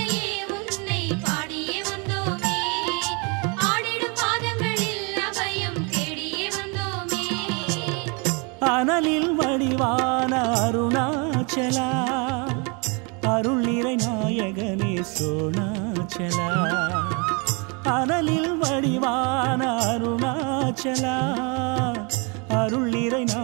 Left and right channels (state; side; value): quieter; left; 32.3 dB